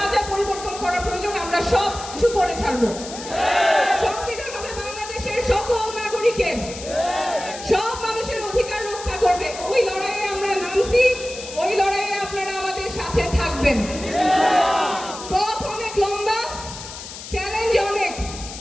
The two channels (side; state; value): left; noise; hiss, 12 dB below the sound